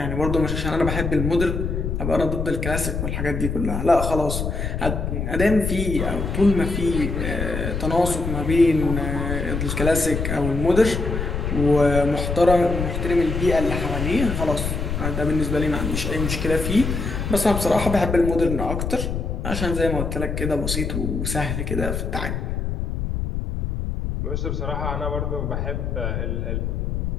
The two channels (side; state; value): left; noise; rumble, 2 dB below the sound